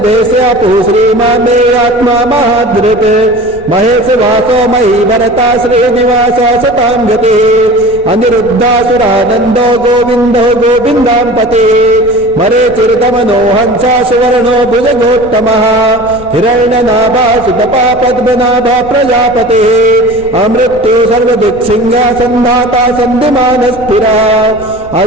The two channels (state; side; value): noise; left; rumble, 18 dB below the sound